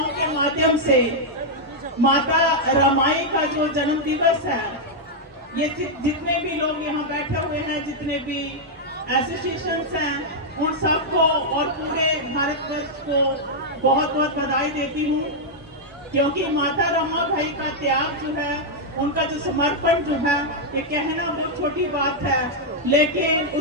के माध्यम से माता रमाई का जो जन्म दिवस है, ये जितने भी लोग यहाँ बैठे हुए हैं, जितने भी एसोसिएशंस हैं, और पूरे भारतवर्ष को बहुत बहुत बधाई देती हूँ, क्योंकि माता रमाबाई का त्याग जो है, उनका जो समर्पण जो है, ये कहना बहुत छोटी बात है, लेकिन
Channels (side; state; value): both; normal; correlation -0.04